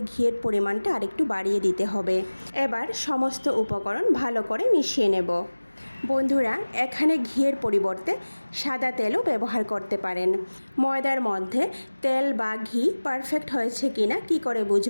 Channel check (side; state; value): both; inverted; correlation -1.00